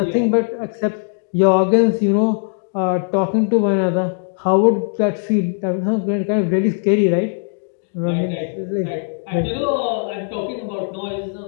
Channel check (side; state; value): right; silent; 66 dB below the other